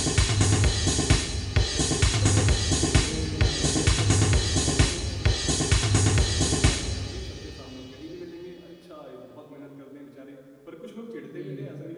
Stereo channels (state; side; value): identical; both; correlation 1.00